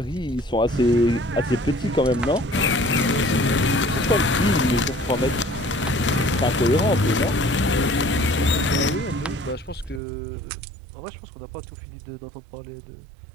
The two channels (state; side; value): drops out; left; at 10.0 s